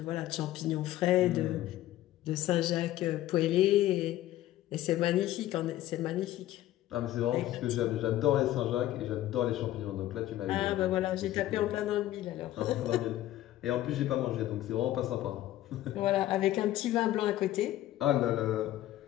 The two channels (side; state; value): right; quieter; 14.2 dB